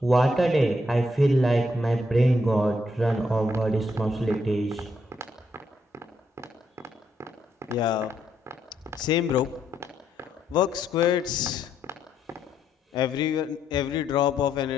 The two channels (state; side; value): normal; both; correlation 0.76